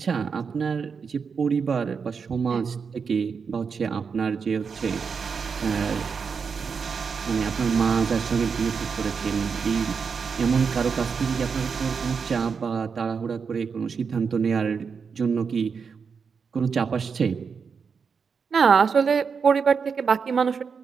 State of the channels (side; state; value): left; quieter; 5.8 dB